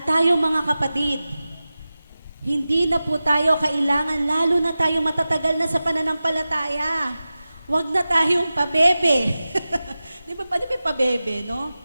tayo mga kapatid, hindi na po tayo kailangan, lalo na tayo matatagal na sa pananampalataya. Huwag na tayong pabebe. Di ba pabebe, no?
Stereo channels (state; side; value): inverted; both; correlation -0.95